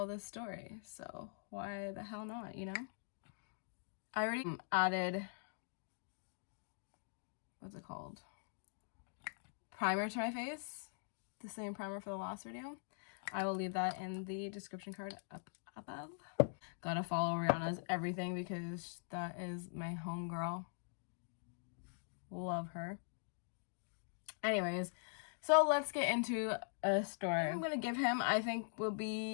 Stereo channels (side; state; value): right; silent; digital silence